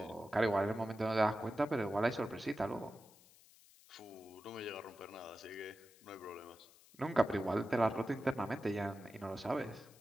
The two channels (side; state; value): left; noise; hiss, 25 dB below the sound